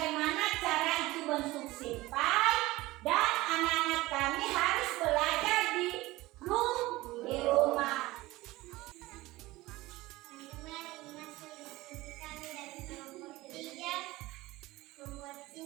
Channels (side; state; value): left; quieter; 19.2 dB